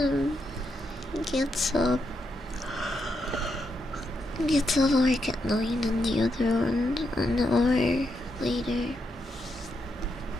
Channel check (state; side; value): normal; both; correlation 0.81